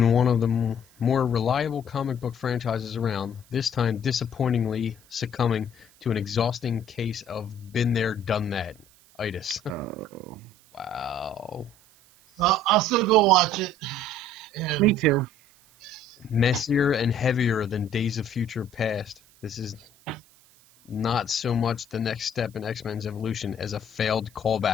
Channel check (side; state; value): right; noise; hiss, 28 dB below the sound